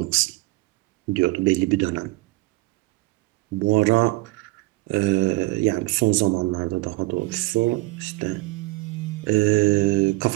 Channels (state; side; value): quieter; left; 21.2 dB